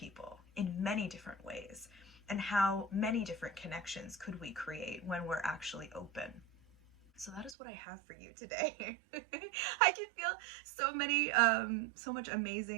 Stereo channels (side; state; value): left; drops out; at 7.6 s